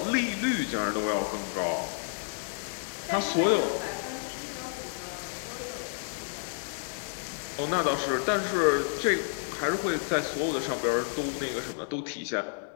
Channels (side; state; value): right; silent; 58 dB below the other